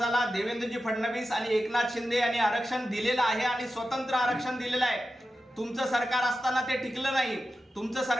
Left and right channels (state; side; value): normal; both; correlation 0.92